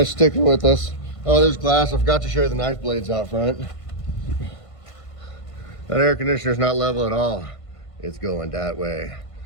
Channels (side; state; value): right; late; 1.5 ms